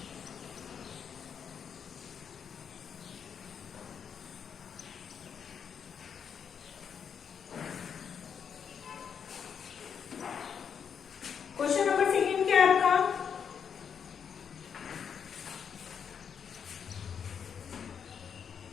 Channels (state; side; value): quieter; right; 7.3 dB